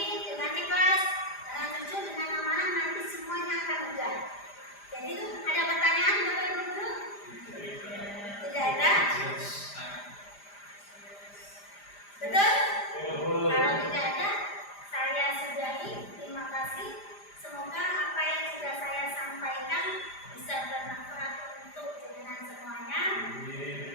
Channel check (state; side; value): late; right; 5.0 ms